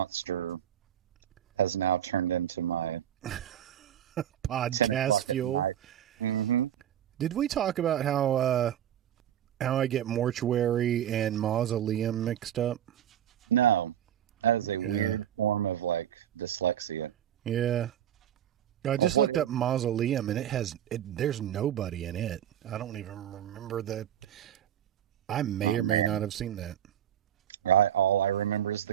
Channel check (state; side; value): quieter; left; 10.4 dB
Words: Podcast fuel. Did we talk about how I get mortuary and mausoleum mixed up? Yeah. I just looked up mausoleum and there's nobody in it. I don't even remember that. I may or may not have seen that.